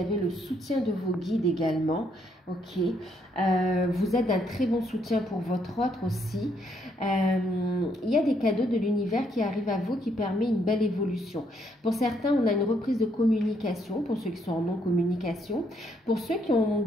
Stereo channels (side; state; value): both; normal; correlation 0.72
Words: le soutien de vos guides également. Ok, vous êtes d'un très bon soutien pour votre autre aussi. Il y a des cadeaux de l'univers qui arrivent à vous qui permet une belle évolution. Pour certains, on a une reprise de communication, pour ceux qui sont en non-communication. Pour ceux qui ont